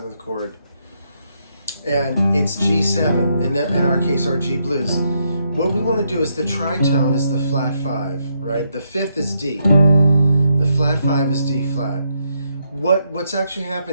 chord, and it's G7, in our case, our G blues, what we want to do is the tritone is the flat 5, right? The fifth is D. The flat 5 is D flat. What's actually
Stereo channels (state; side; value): inverted; both; correlation -0.77